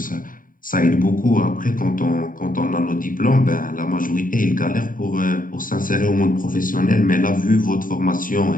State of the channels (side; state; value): right; late; 0.40 ms